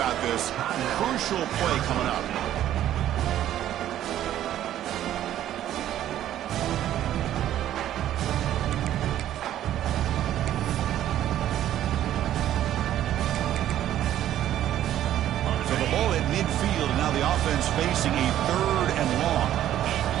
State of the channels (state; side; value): quieter; left; 12.1 dB